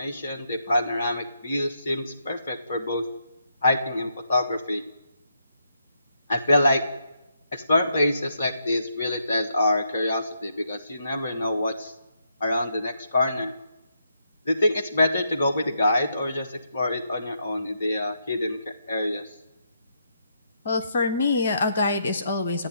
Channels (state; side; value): inverted; both; correlation -0.78